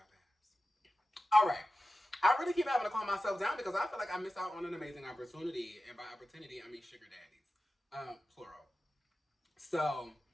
pass. All right. I really keep having to calm myself down because I feel like I miss out on an amazing opportunity. And by opportunity, I mean sugar daddies. Plural. So,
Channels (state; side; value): normal; both; correlation 0.93